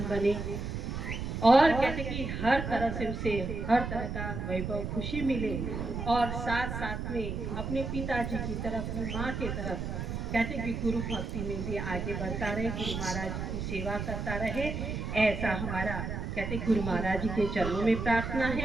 बने और कहते कि हर तरह से उसे हर तरह का वैभव खुशी मिले और साथ साथ में अपने पिताजी की तरफ अपनी माँ के तरफ कहते कि गुरु भक्ति में भी आगे बढ़ता रहे, गुरु महाराज की सेवा करता रहे, ऐसा हमारा कहते गुरु महाराज जी के चरणों में प्रार्थना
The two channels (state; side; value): noise; right; rumble, 4 dB below the sound